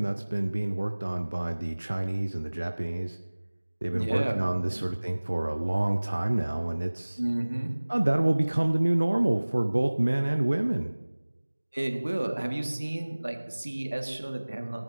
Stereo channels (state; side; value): inverted; both; correlation -1.00